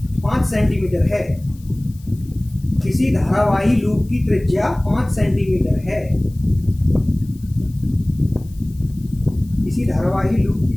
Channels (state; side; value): noise; left; hiss, 27 dB below the sound